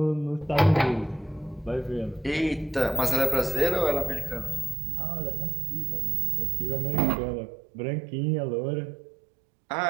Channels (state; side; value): drops out; left; at 4.8 s